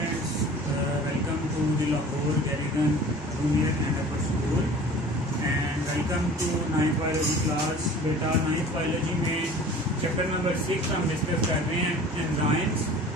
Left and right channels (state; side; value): normal; both; correlation 0.43